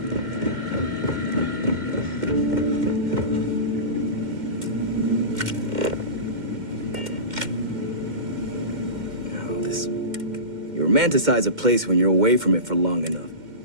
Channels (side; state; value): left; late; 2.1 ms